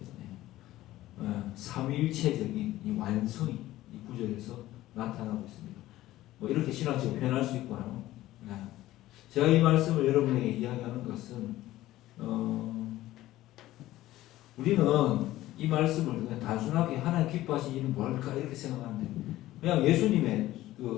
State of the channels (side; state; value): right; quieter; 15.6 dB